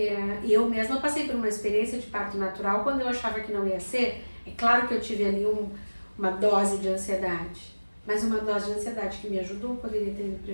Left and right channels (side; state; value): both; inverted; correlation -1.00